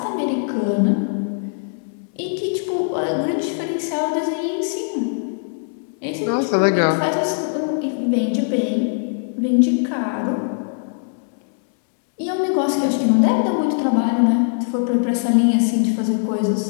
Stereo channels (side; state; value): right; silent; 65 dB below the other